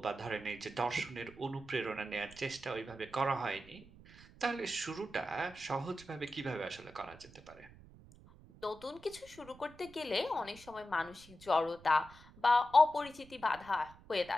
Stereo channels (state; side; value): noise; right; rumble, 21 dB below the sound